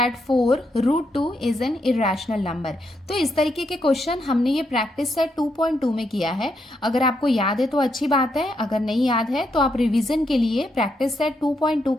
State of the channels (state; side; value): normal; both; correlation 0.80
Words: 4 root 2 is an irrational number. तो इस तरीके के क्वेश्चन हमने ये प्रैक्टिस सेट 2.2 में किया है। अगर आपको याद है तो अच्छी बात है, अगर नहीं याद है तो आप रिवीजन के लिए प्रैक्टिस सेट 2.2